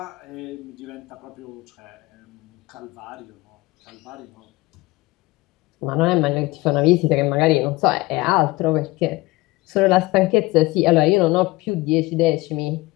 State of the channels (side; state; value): right; quieter; 20.7 dB